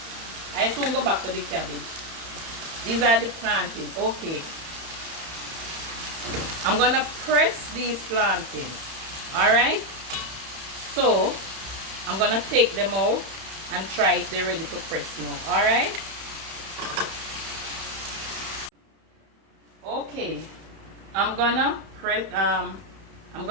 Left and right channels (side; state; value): left; late; 31 ms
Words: I soon go back to the cabbage. These are the plantain. Okay, I'm gonna press these plantains. Alright? So I'm gonna take them out and try if they're ready to press now. Alright? Okay. I'm gonna press